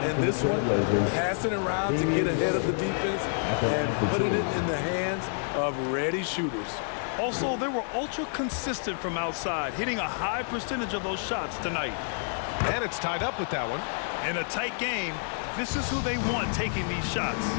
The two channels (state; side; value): silent; right; digital silence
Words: this one. Passing around to get ahead of the defense and putting it in the hands of ready shooters. Also, they were ultra consistent from outside, hitting a high percentage of those shots tonight. And it's tied up with that one. In a tight game, this is who they want taking these shots.